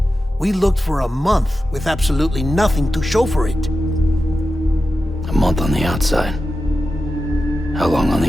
We looked for a month with absolutely nothing to show for it. A month on the outside. How long on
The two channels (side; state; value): both; normal; correlation 0.92